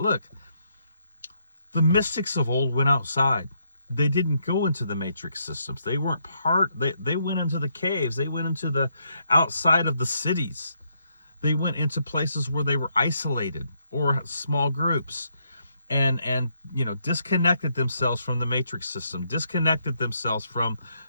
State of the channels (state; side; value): inverted; both; correlation -0.75